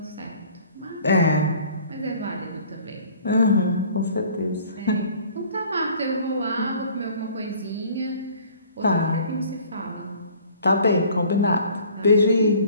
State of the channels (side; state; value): both; inverted; correlation -0.52